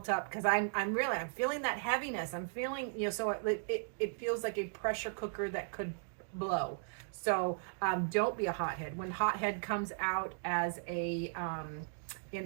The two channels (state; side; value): silent; left; digital silence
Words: up. Because I'm feeling that heaviness. I'm feeling, so it feels like a pressure cooker that could blow. So don't be a hothead. When hothead comes out as a in